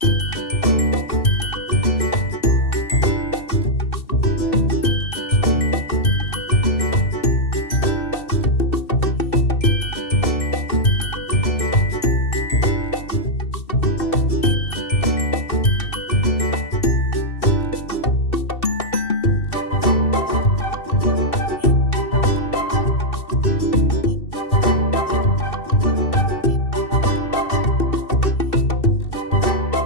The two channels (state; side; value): late; right; 2.7 ms